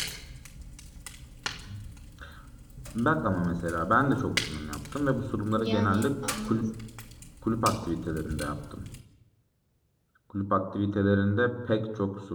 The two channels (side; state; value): both; identical; correlation 1.00